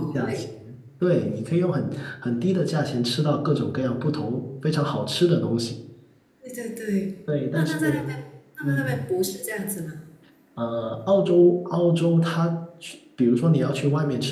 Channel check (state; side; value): identical; both; correlation 1.00